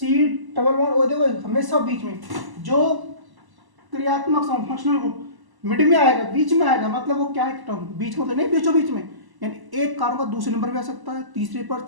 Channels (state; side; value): late; left; 1.0 ms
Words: डबल बॉन्ड ओ। देखो हमेशा बीच में जो क्रियात्मक समूह, फंक्शनल ग्रुप मिड में आएगा, बीच में आएगा, मतलब वो क्या है, कीटोन। बीच में तो नहीं, बीचों बीच में, यानी एक कार्बन का दूसरे नंबर पे आ सकता है, तीसरे पर,